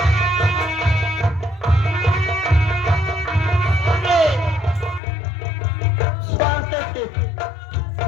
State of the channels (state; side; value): drops out; right; at 5.0 s